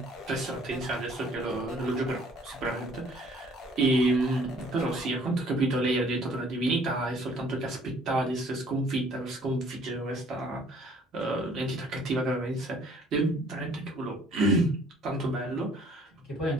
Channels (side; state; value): both; normal; correlation 0.58